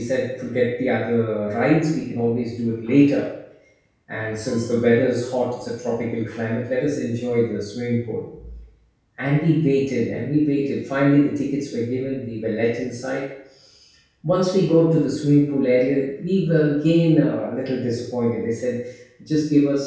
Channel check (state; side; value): identical; both; correlation 1.00